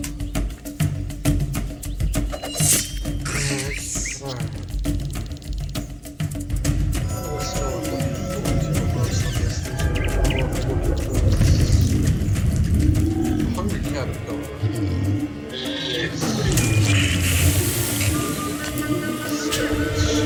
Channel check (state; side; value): identical; both; correlation 1.00